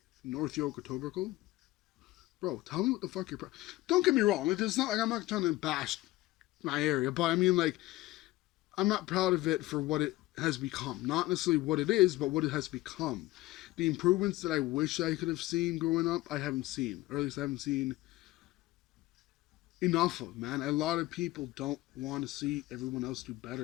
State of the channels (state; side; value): quieter; right; 17.9 dB